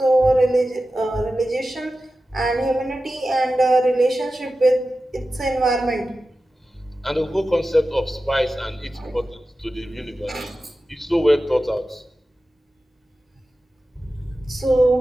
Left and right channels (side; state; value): both; normal; correlation 0.94